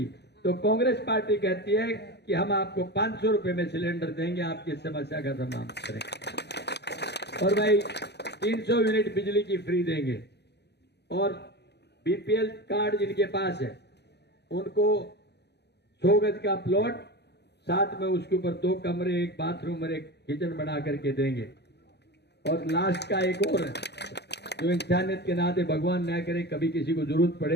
तो कांग्रेस पार्टी कहती है कि हम आपको 500 रुपए में सिलेंडर देंगे, आपकी समस्या का समाधान करेंगे, और भाई 300 यूनिट बिजली की फ्री देंगे, और बीपीएल कार्ड जिनके पास है उनको 100 गज का प्लॉट, साथ में उसके ऊपर 2 कमरे, 1 बाथरूम और 1 किचन बना करके देंगे। और लास्ट का एक और है, तो इंसानियत के नाते भगवान न करे कभी किसी को जरूरत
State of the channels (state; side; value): late; right; 0.49 ms